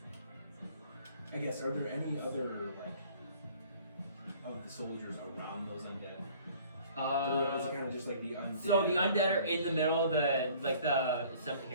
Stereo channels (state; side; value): inverted; both; correlation -0.53